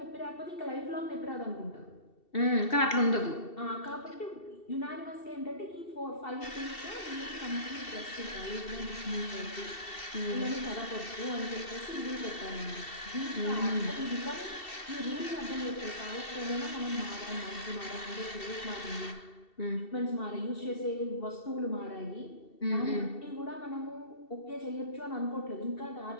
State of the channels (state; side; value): late; right; 2.7 ms